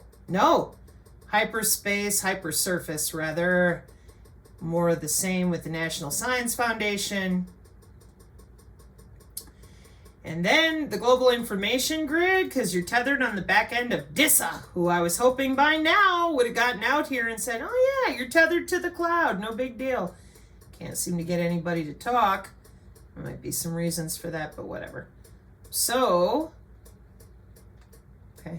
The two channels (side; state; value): both; identical; correlation 1.00